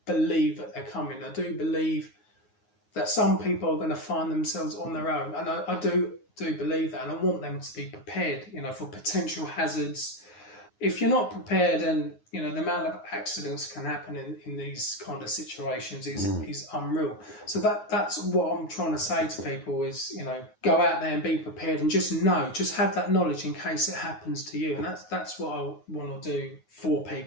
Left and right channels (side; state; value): right; late; 9.5 ms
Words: believe that they're coming. I do believe that some people are going to find themselves on their own, and I do believe that, and I want them to be prepared, you know, for potential hazards. If you're not prepared, and you know the amount of accidents can happen in these kind of situations is unreal. So that's what I'm trying to say to people is, you know, go out there and be prepared, and just have that knowledge in case it happens to you. And that's what I want to do for